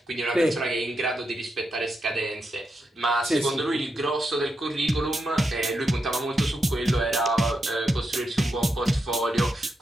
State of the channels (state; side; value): normal; both; correlation 0.84